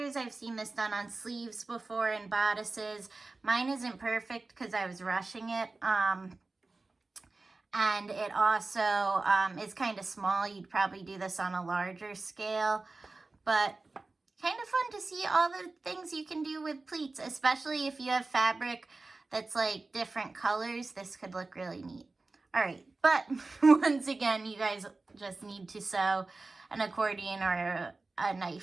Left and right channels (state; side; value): quieter; left; 3.5 dB